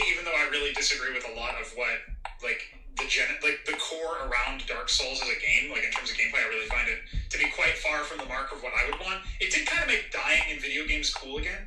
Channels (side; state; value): both; identical; correlation 1.00